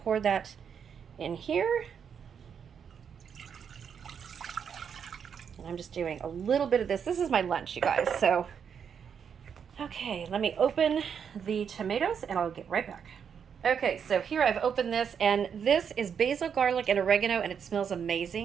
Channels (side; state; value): left; quieter; 7.3 dB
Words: pour that in here. And I'm just doing a little bit of this. This is my lunch, you guys. So, okay, let me open the tomatoes and I'll get right back. Okay, so here I've opened this, and this is basil, garlic, and oregano, and it smells